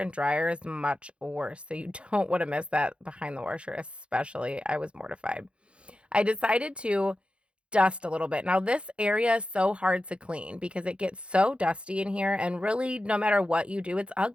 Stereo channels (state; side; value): late; left; 0.058 ms